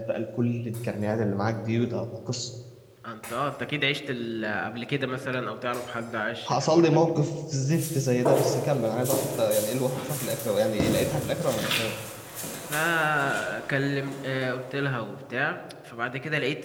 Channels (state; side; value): identical; both; correlation 1.00